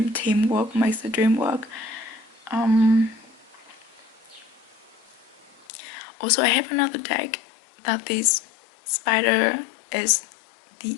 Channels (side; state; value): right; drops out; at 5.7 s